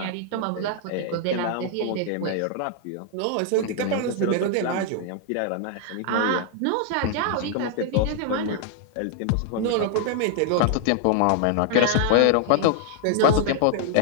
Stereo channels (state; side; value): different; both; correlation 0.00